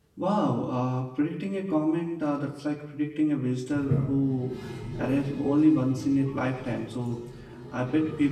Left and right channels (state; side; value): identical; both; correlation 1.00